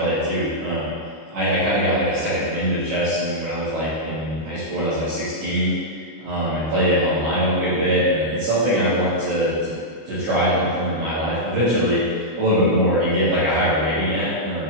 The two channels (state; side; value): late; left; 25 ms